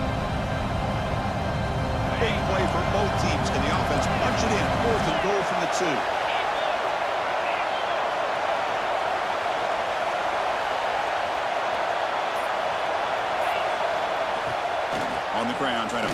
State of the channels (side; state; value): both; identical; correlation 1.00